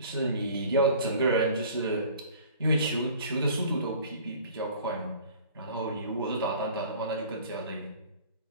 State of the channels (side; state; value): both; inverted; correlation -0.47